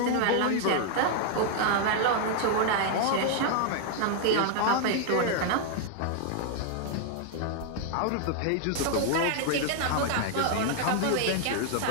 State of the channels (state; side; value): different; both; correlation 0.00